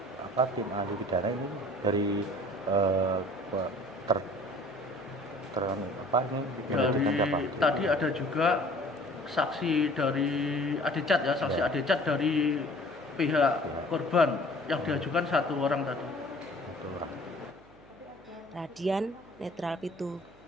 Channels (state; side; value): noise; right; hum, 25 dB below the sound